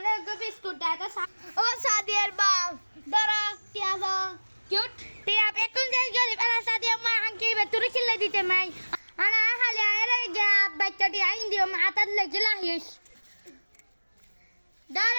গো বিস্কুট দাও ও সাদিয়ার বাপ দাঁড়া টিয়া দাও কিউট টিয়া এখন যাই গেলি বেলা সাদিয়া মা আংকি বেতুরি খিলে দিতে মাই আনা খালি আরে গা বাচ্চাটি আইন দিও মা আতাত লেগে লাহিস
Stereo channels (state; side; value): inverted; both; correlation -1.00